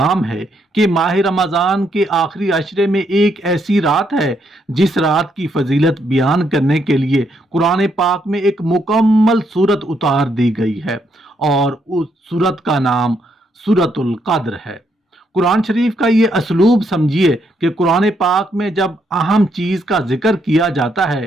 ہے کہ ماہ رمضان کے آخری عشرے میں ایک ایسی رات ہے جس رات کی فضیلت بیان کرنے کے لیے قرآن پاک میں ایک مکمل سورت اتار دی گئی ہے، اور اس سورت کا نام سورۃ القدر ہے۔ قرآن شریف کا یہ اسلوب سمجھیے کہ قرآن پاک میں جب اہم چیز کا ذکر کیا جاتا ہے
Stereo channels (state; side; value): normal; both; correlation 0.75